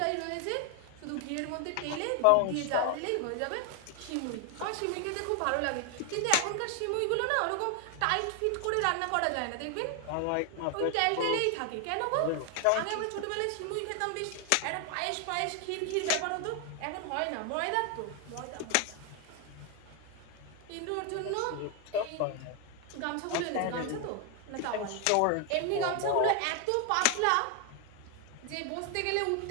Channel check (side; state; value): both; different; correlation 0.00